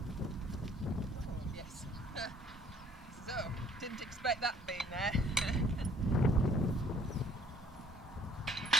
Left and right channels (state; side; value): normal; both; correlation 0.58